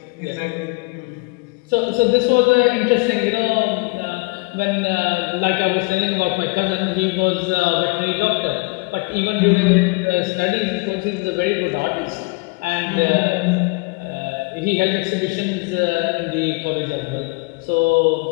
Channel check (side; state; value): right; quieter; 28.0 dB